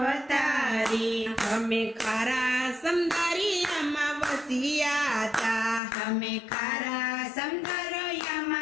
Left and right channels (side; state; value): right; drops out; at 5.8 s